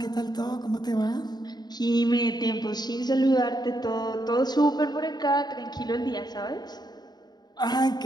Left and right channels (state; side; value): late; right; 0.20 ms